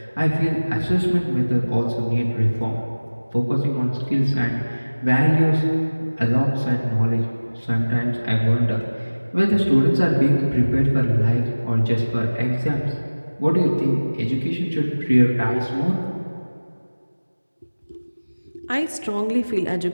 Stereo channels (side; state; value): both; inverted; correlation -1.00